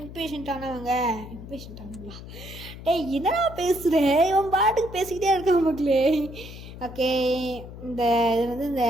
ஆனவங்களா? என்னடா பேசுகிறேன்? இவன் பாட்டுக்கு பேசிக்கிட்டே இருக்க மக்களே. ஓகே, இந்த இது வந்து இந்த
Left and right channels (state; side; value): noise; left; hum, 13 dB below the sound